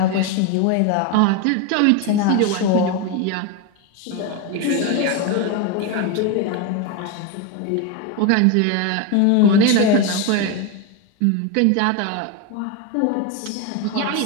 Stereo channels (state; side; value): different; both; correlation 0.03